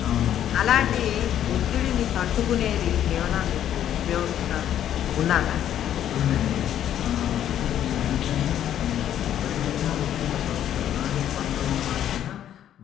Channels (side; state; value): right; quieter; 10.7 dB